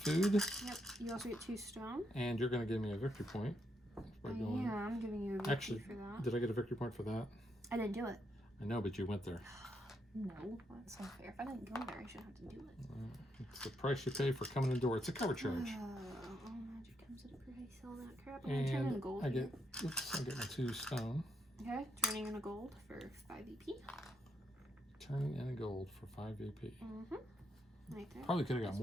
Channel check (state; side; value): normal; both; correlation 0.79